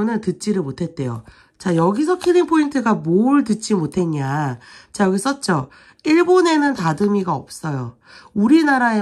듣지를 못했대요. 자, 여기서 킬링 포인트가 뭘 듣지 못했냐. 자, 여기 썼죠. 일본에는 다듬이가 없어요.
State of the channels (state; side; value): identical; both; correlation 1.00